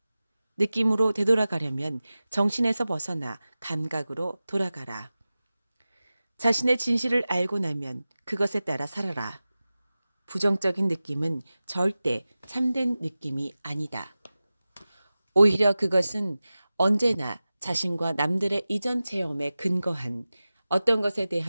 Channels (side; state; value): both; inverted; correlation -0.96